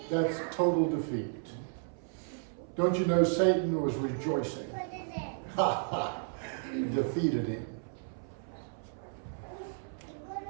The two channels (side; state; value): left; silent; 56 dB below the other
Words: that's total defeat. Don't you know Satan was rejoicing? Ha ha! Defeated him.